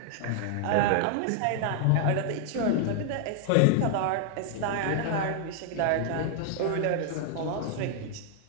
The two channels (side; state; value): both; different; correlation 0.00